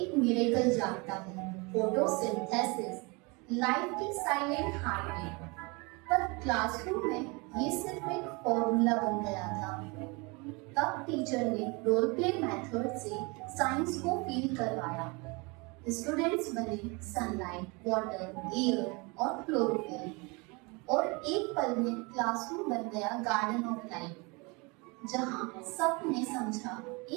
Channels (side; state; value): left; quieter; 28.2 dB